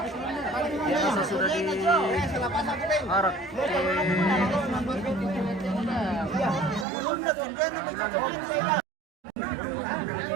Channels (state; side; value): drops out; left; at 6.9 s